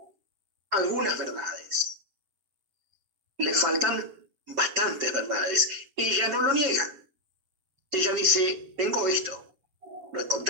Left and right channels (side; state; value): left; late; 7.3 ms